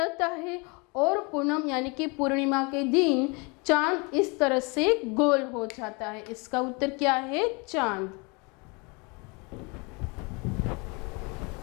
है और पूनम यानी कि पूर्णिमा के दिन चांद इस तरह से गोल हो जाता है। इसका उत्तर क्या है, चांद।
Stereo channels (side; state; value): right; quieter; 29.9 dB